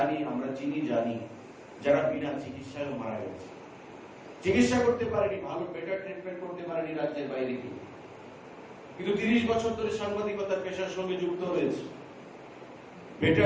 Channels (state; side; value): identical; both; correlation 1.00